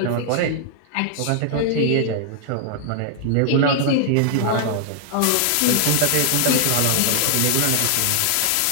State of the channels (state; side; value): different; both; correlation 0.00